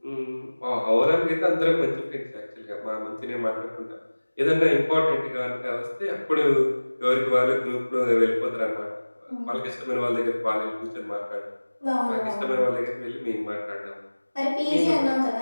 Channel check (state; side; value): inverted; both; correlation -1.00